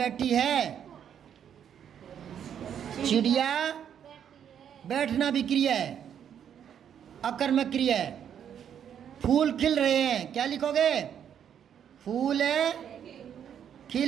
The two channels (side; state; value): left; quieter; 8.9 dB